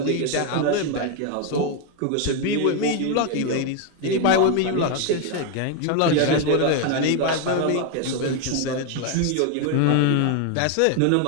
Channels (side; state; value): both; different; correlation 0.01